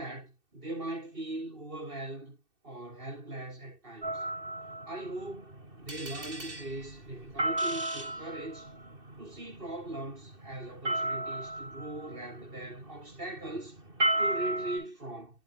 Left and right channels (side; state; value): left; late; 2.6 ms